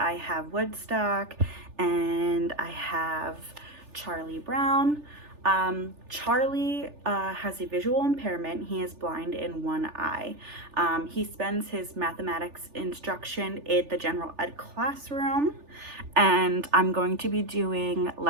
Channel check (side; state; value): left; late; 3.4 ms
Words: have Woodstock and I have Charlie Brown. Charlie has a visual impairment. He is blind in one eye. He spends his mathematics instruction in the general ed classroom, and I'm going to be doing